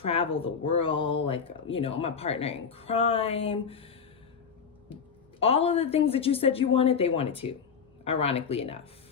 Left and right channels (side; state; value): right; quieter; 6.3 dB